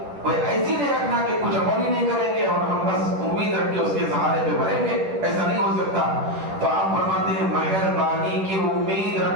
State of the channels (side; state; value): left; late; 10 ms